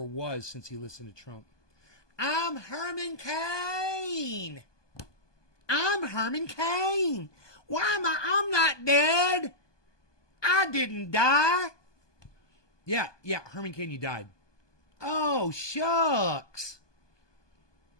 was since he listened to Trump. I'm Herman Cain. I'm Herman Cain. Why am I'm not dead. I didn't die. Yeah, Herman Cain, you died. Oh, shucks.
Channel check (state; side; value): late; right; 1.2 ms